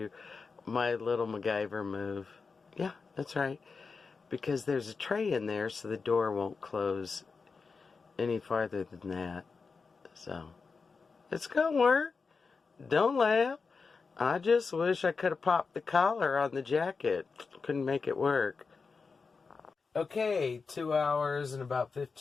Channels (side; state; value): right; quieter; 4.8 dB